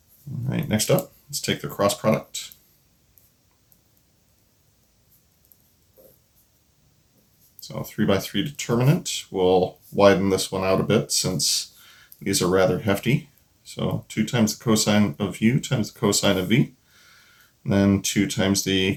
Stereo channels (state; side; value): identical; both; correlation 1.00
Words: All right, next up, let's take the cross product. So 3 by 3 determinant. We'll widen this one out a bit since these are rather hefty. So 2 times the cosine of u times the cosine of v. And then 2 times the